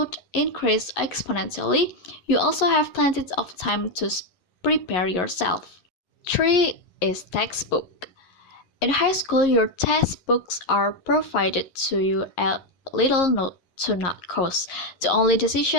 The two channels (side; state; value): right; late; 11 ms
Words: increases exponentially, you also have plenty of time to prepare yourself. 3 is textbook. In high school, your textbooks are provided to you at little note to not cost. The only